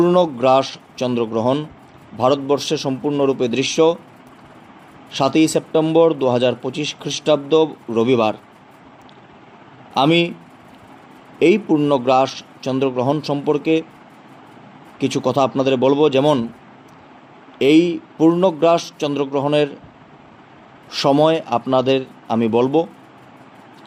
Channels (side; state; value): both; identical; correlation 1.00